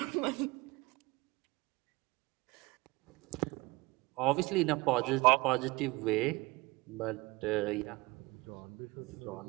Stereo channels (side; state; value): left; quieter; 23.2 dB